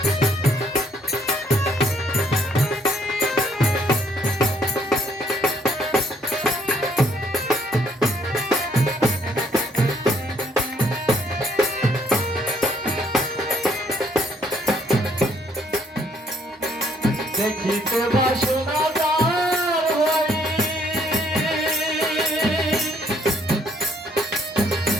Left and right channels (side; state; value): both; normal; correlation 0.66